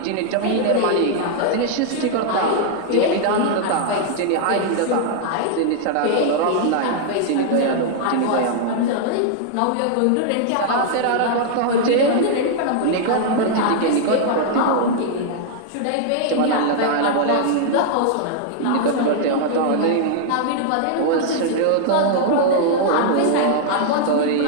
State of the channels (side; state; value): both; different; correlation -0.01